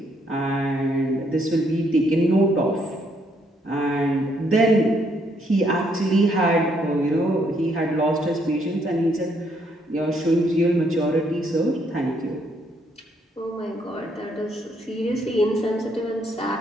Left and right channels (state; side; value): normal; both; correlation 0.71